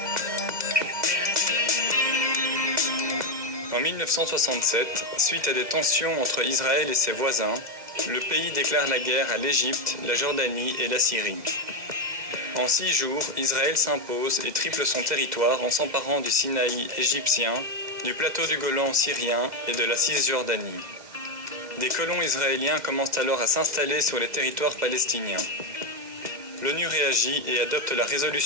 En 1967, suite à des tensions entre Israël et ses voisins, le pays déclare la guerre à l'Égypte, la Jordanie et la Syrie. En 6 jours, Israël s'impose et triple son territoire en s'emparant du Sinaï égyptien, du plateau du Golan syrien et de la Cisjordanie. Des colons israéliens commencent alors à s'installer sur les territoires palestiniens. L'ONU réagit et adopte la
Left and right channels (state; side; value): late; left; 2.0 ms